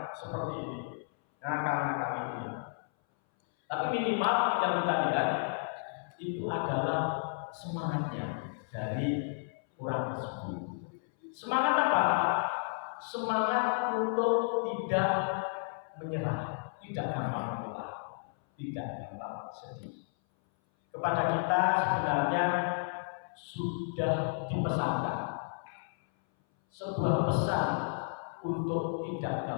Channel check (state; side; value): silent; right; 56 dB below the other